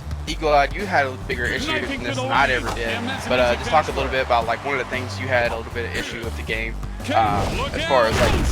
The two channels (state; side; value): identical; both; correlation 1.00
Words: Eagle-Eyed, you had a bigger issue than this than I ever did. But just talk a little bit about like one of the things you had a little bit of issue with the game, as far as like